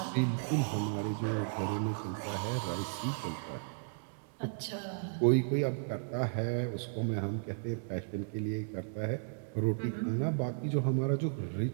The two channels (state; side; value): silent; left; digital silence